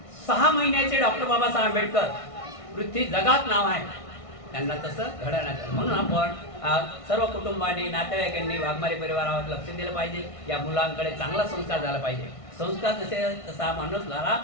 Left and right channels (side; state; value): right; late; 1.5 ms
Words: 6 महिन्याचे डॉक्टर बाबासाहेब आंबेडकर पृथ्वी जगात नाव आहे, त्यांना तसं घडवण्यात आलं. म्हणून आपण सर्व कुटुंबांनी, नातेवाईकांनी वाघमारे परिवारावर लक्ष दिलं पाहिजे. या मुलांकडे चांगला संस्कार झाला पाहिजे. संस्कार तसा